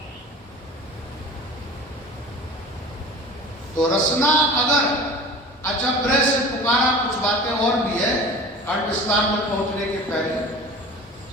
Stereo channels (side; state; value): both; normal; correlation 0.39